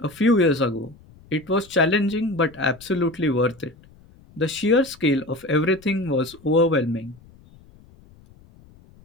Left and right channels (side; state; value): left; noise; rumble, 25 dB below the sound